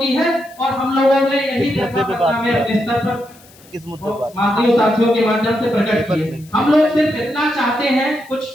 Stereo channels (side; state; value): left; noise; hiss, 25 dB below the sound